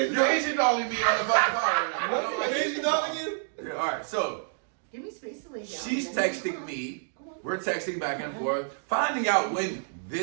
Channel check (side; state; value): left; silent; digital silence